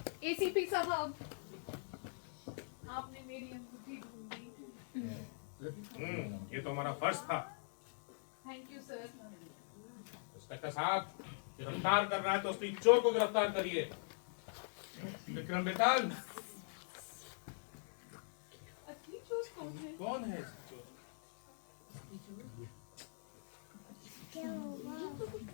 आपने मेरी अंगूठी ढूंढी। ये तो हमारा फर्ज था। Thank you sir. इंस्पेक्टर साहब, गिरफ्तार कर रहा है तो उसकी चोर को गिरफ्तार करिए। विक्रम बेताल, असली चोर कौन है? कौन है चोर?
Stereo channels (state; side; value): silent; right; digital silence